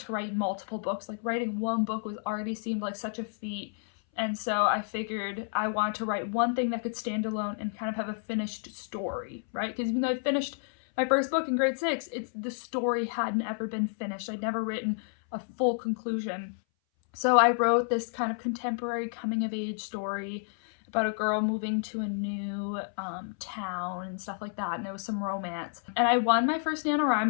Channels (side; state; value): right; silent; 58 dB below the other